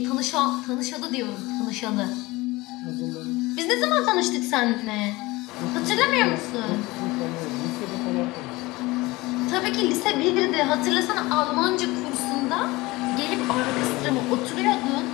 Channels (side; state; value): right; quieter; 21.2 dB